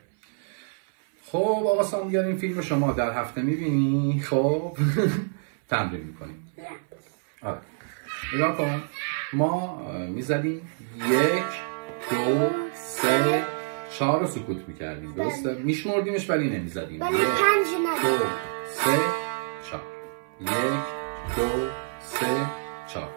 خب آقا سامیار این فیلم رو شما در هفته میبینی؟ خب تمرین میکنیم. آره نگاه کن، ما میزدیم 1 2 3 4 رو سکوت میکردیم، درسته؟ میشمردیمش ولی نمیزدیم. 1 2 3 4 1 2 3 4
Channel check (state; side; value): silent; left; 58 dB below the other